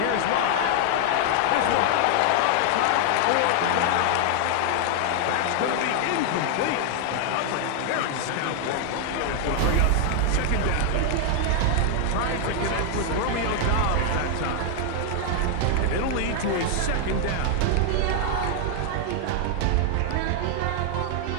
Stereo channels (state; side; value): different; both; correlation 0.00